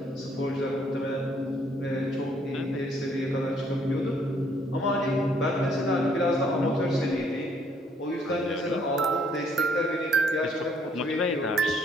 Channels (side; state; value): both; normal; correlation 0.66